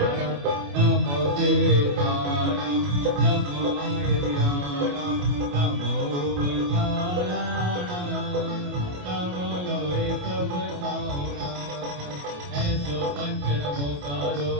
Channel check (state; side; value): late; left; 28 ms